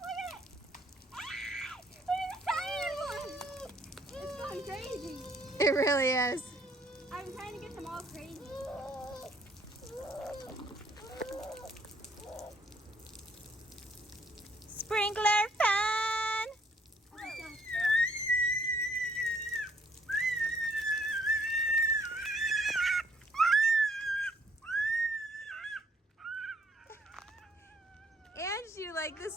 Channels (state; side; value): normal; both; correlation 0.65